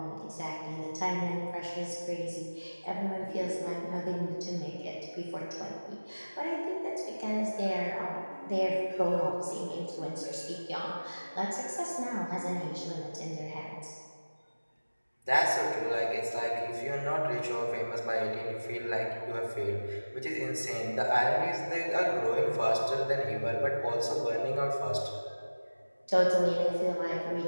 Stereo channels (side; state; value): both; inverted; correlation -1.00